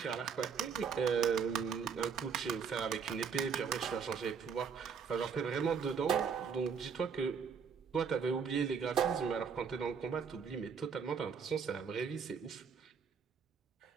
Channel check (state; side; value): quieter; left; 6.4 dB